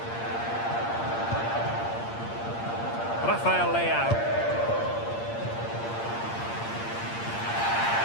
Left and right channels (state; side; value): late; right; 8.7 ms